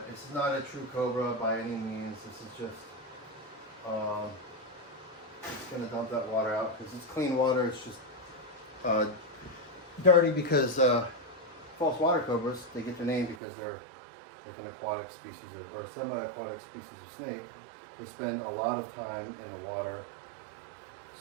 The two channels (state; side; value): drops out; left; at 13.4 s